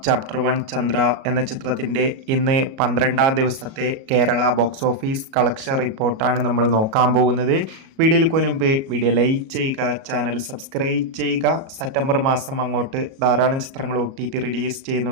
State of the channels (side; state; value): left; late; 37 ms